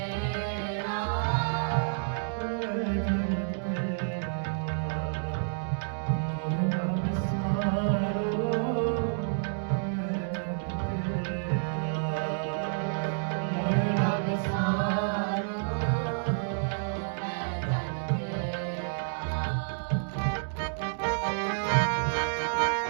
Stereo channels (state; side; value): silent; left; digital silence